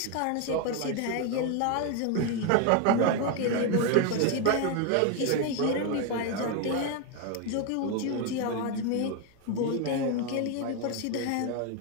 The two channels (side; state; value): both; different; correlation 0.01